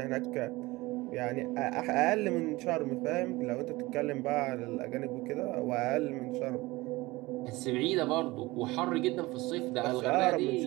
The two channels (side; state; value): left; quieter; 20.9 dB